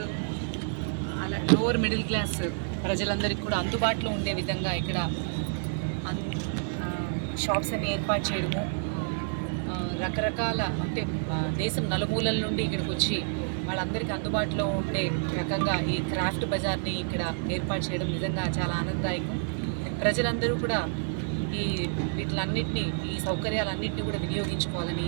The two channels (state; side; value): silent; left; digital silence